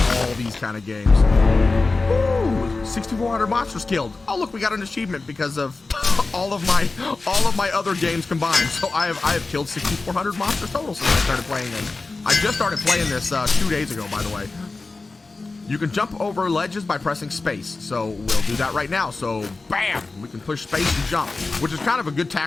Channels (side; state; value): right; quieter; 3.7 dB